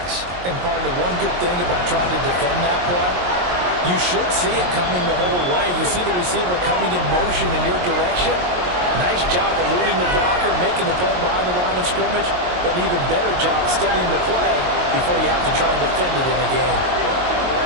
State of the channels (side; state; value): left; late; 22 ms